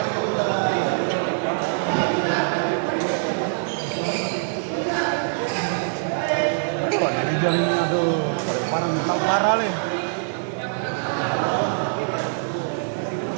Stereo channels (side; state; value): left; silent; digital silence